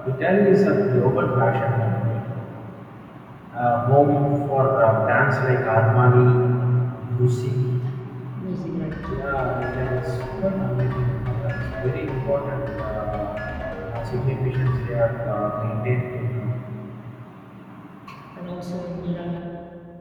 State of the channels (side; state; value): both; identical; correlation 1.00